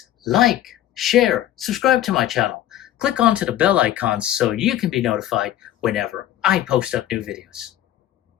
like, share, subscribe to my channel. Click onto the bell icon so you can be notified whenever I post up new videos.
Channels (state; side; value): quieter; right; 12.6 dB